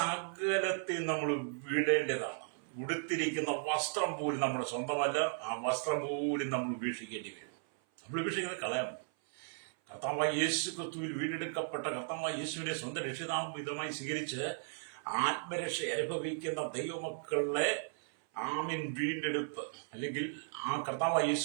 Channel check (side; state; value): left; silent; 54 dB below the other